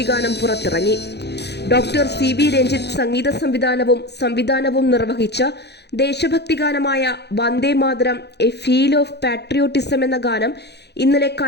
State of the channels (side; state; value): right; late; 0.49 ms